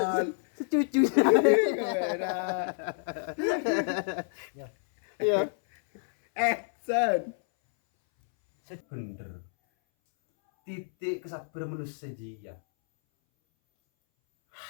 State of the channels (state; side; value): silent; right; 59 dB below the other